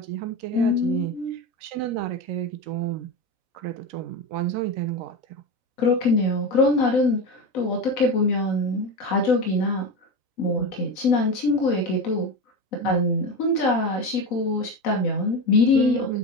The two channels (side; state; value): right; late; 3.9 ms